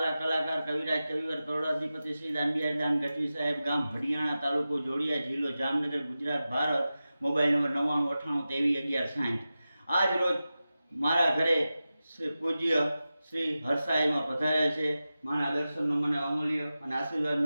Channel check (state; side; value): inverted; both; correlation -0.94